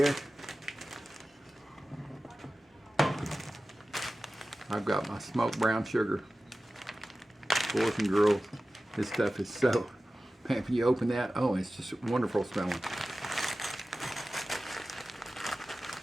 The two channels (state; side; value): normal; both; correlation 0.95